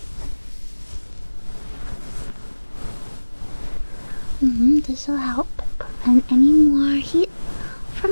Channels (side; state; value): both; inverted; correlation -1.00